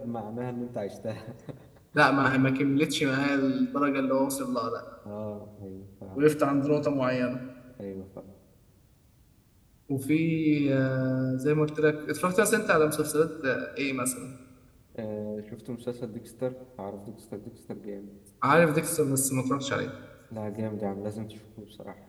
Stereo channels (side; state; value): both; identical; correlation 1.00